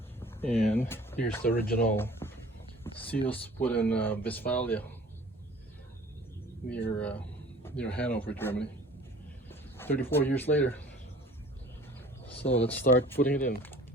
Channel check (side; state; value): both; normal; correlation 0.48